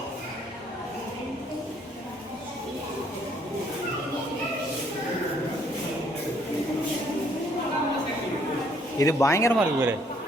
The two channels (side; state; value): both; normal; correlation 0.65